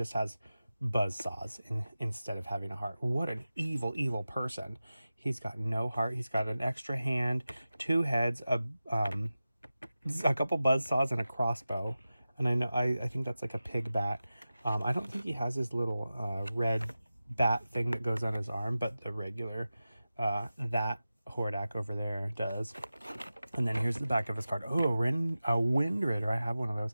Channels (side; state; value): both; inverted; correlation -0.94